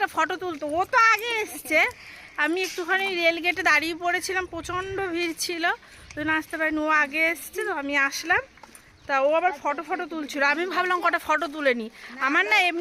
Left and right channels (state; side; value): identical; both; correlation 1.00